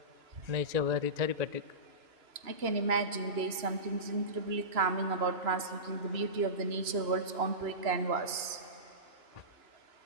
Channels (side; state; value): left; late; 2.9 ms